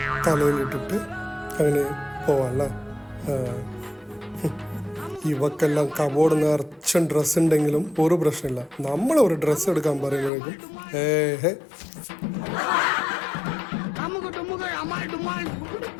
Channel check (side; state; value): right; drops out; at 10.3 s